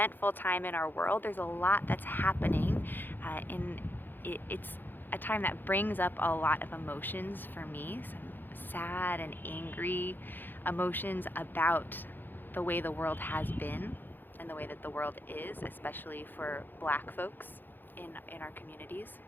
time in our world. There's a lot that's happening it's a time that brings up a lot of emotions for me, some sad and angry emotions about the way the world has been and the way that the world is, especially for Black folks in our communities.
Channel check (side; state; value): right; late; 0.091 ms